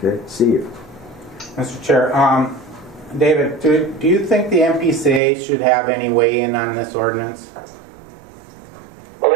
Okay, Steve. Mr. Chair, David, do you think the MPCA should have any weigh in on this ordinance? Well,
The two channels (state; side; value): drops out; left; at 5.2 s